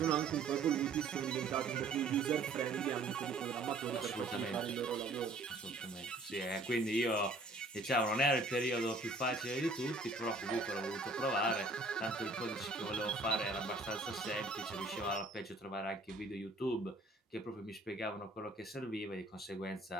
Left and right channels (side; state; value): left; quieter; 3.0 dB